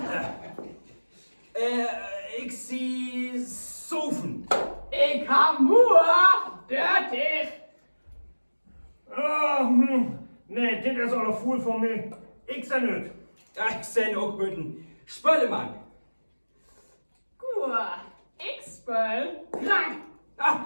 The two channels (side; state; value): both; inverted; correlation -1.00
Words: Ich sehe Sofen. Ich har mur, dørtig. Nee, dit is al een voel voor mij. Ik zijn het. Ich sehe auch guten Spöllemann. Gur, ich spøl, krank.